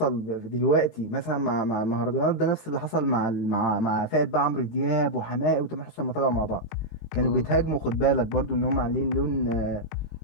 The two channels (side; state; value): right; late; 18 ms